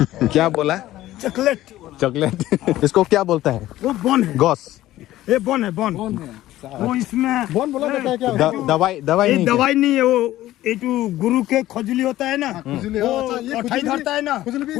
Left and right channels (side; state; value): right; quieter; 14.9 dB